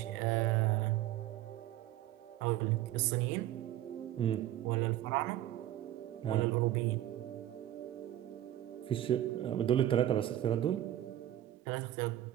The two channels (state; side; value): quieter; left; 13.0 dB